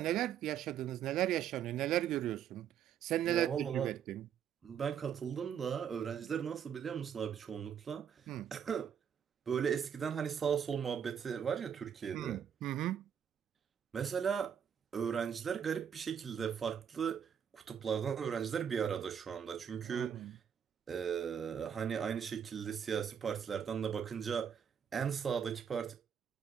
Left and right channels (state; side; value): quieter; left; 8.2 dB